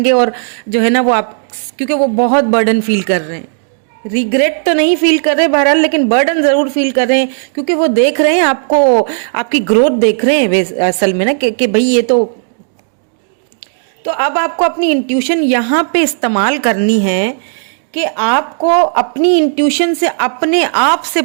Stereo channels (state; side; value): silent; left; digital silence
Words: और जो है ना वो आप, क्योंकि वो बहुत बर्डन फील कर रहे हैं, रिग्रेट तो नहीं फील कर रहे बहरहाल, लेकिन बर्डन जरूर फील कर रहे हैं, क्योंकि वो देख रहे हैं आपको, आपकी ग्रोथ देख रहे हैं असल में ना कि भाई ये तो अब आपको अपनी इंट्यूशन यहाँ पे इस्तेमाल करनी है कि आपको अपनी इंट्यूशन से अपने आप से